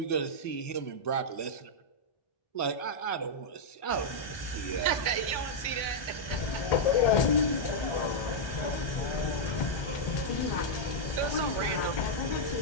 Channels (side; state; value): right; late; 1.2 ms